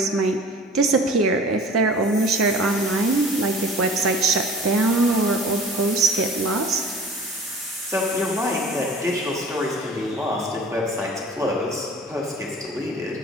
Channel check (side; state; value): both; normal; correlation 0.44